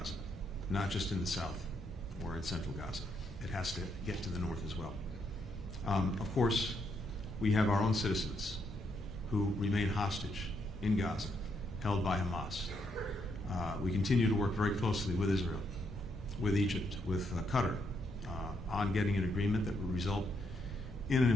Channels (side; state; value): both; normal; correlation 0.76